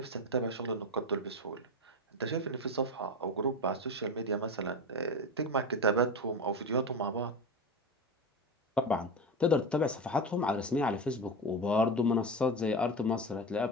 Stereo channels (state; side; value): normal; both; correlation 0.22